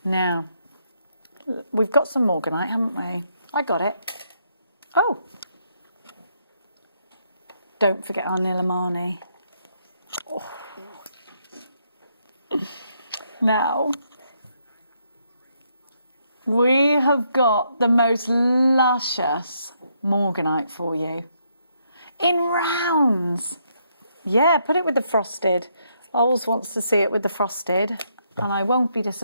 Now, we've got some morganite, haven't we? I got it. Oh. Don't forget our Nilamani. Oh. Now, we have got the most luscious morganite for you. In rounds. Yeah, put it with the frosted. Ols wants to see it with the frosted. And I won't be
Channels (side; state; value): both; inverted; correlation -0.75